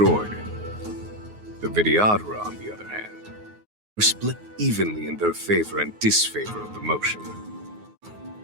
The Vidyadhara, on the other hand, were split evenly in their favor and disfavor of the motion.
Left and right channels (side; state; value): left; late; 9.5 ms